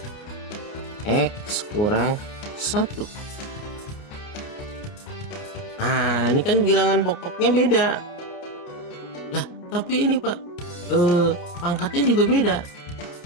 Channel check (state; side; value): late; right; 29 ms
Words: X kurang 1. Nah, ini kan bilangan pokoknya beda. Lah, tapi ini Pak, pangkatnya juga beda.